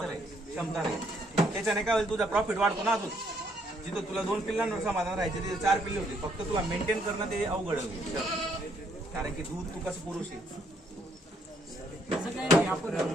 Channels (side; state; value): both; normal; correlation 0.70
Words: क्षमता राहील. त्याच्याने काय होईल तुझा प्रॉफिट वाढतो ना. अजून जिथं तुला 2 पिल्लांवर समाधान राहायचं तिथे 4 पिल्ले होते. फक्त तुला मेंटेन करणं ते अवघड होईल कारण की दूध तू कसं पुरुष आहे. आपण